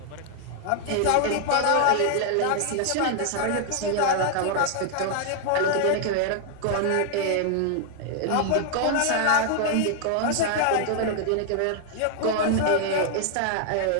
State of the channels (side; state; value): both; different; correlation 0.00